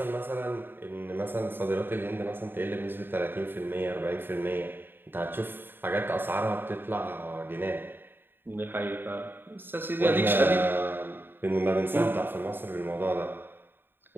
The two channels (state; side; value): late; left; 0.098 ms